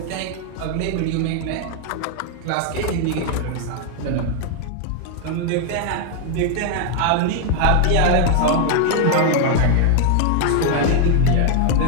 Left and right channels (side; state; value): both; different; correlation 0.00